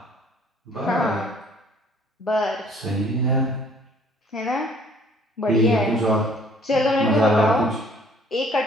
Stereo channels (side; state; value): both; normal; correlation 0.58